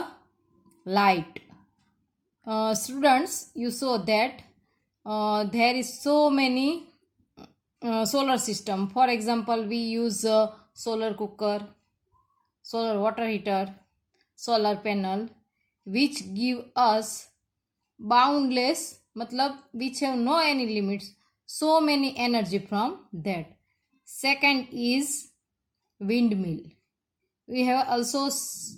light. Students, you saw that there is so many solar system. For example, we use solar cooker, solar water heater, solar panel, which give us boundless matlab which have no any limits, so many energy from that. Second is windmill. We have also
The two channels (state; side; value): identical; both; correlation 1.00